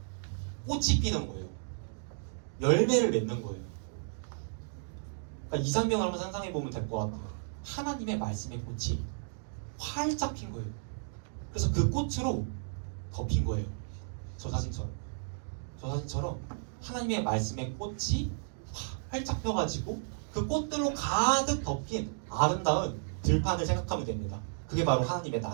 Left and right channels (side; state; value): left; silent; digital silence